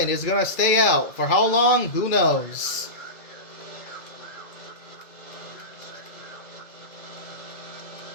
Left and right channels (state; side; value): late; right; 2.4 ms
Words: is going to stay out. For how long? Who knows?